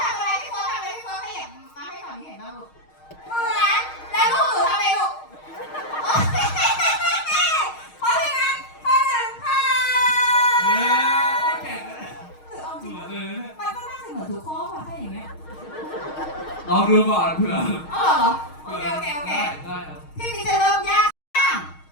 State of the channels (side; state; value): right; late; 6.4 ms